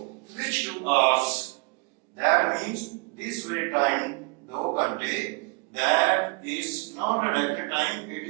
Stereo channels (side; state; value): left; quieter; 29.3 dB